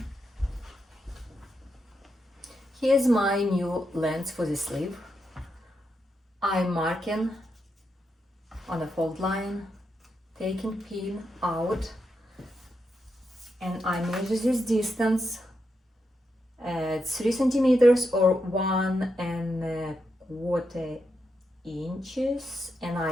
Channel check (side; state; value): both; normal; correlation 0.84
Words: Here's my new length for the sleeve. I'm marking on a fold line, taking pin out, and I measure this distance at 3 centimeters or 1.25 inches, and